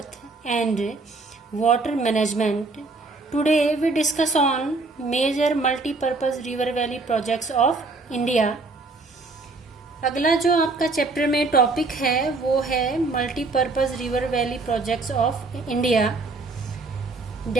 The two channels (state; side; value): quieter; left; 3.6 dB